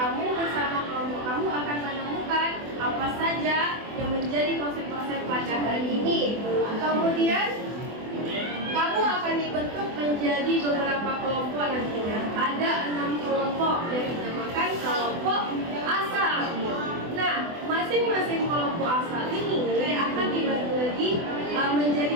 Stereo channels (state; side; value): late; left; 24 ms